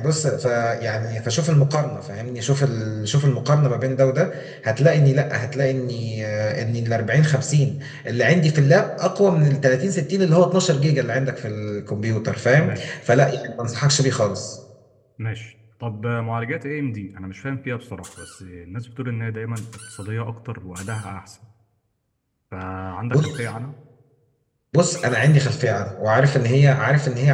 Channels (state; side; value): identical; both; correlation 1.00